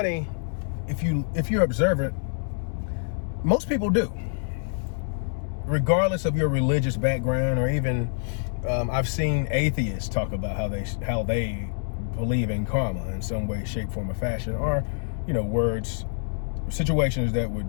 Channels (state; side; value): silent; right; digital silence